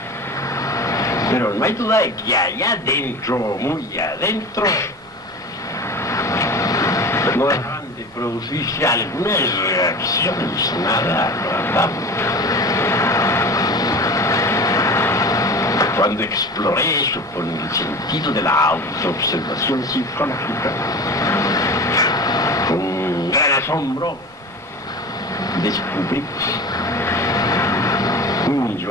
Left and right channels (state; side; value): normal; both; correlation 0.33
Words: Pero no hay duda de que allá adentro, muy adentro, no dejaban de producirse algunas reacciones nada agradables. Cuando exploré eso con el sentido de la autoobservación psicológica, con gran asombro, descubrí un